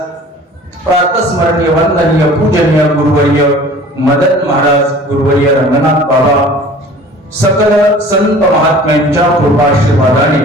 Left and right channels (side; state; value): both; normal; correlation 0.46